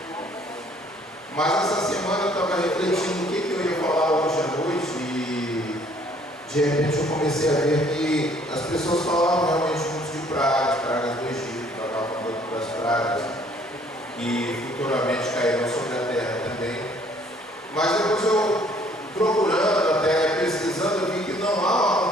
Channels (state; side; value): normal; both; correlation 0.60